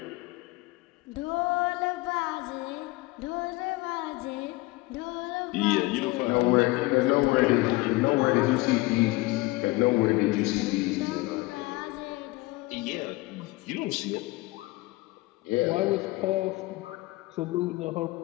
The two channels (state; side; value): quieter; right; 21.3 dB